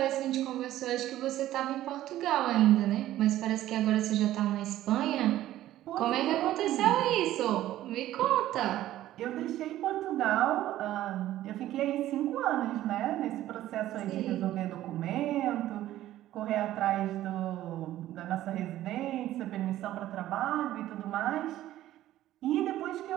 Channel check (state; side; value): quieter; left; 13.9 dB